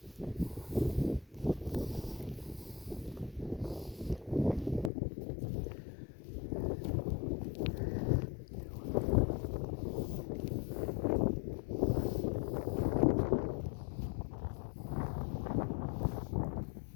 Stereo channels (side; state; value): right; drops out; at 4.9 s